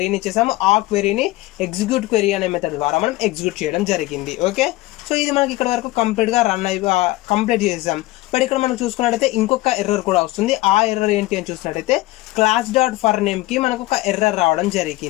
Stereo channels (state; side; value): quieter; right; 19.0 dB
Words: ఇచ్చేసాము. ఆ క్వెరీని ఎగ్జిక్యూట్ క్వెరీ అనే మెథడ్ ద్వారా మనం ఎగ్జిక్యూట్ చేయడం జరిగింది. ఓకే. సో ఇది మనకి ఇక్కడ వరకు కంప్లీట్గా కంప్లీట్ చేసాం. బట్ ఇక్కడ మనం చూసుకున్నట్టయితే ఇంకొక ఎర్రర్ కూడా వస్తుంది. ఆ ఎర్రర్ ఏంటి అని చూసినట్టయితే class.forNameకి మనకు ఒక ఎర్రర్ రావడం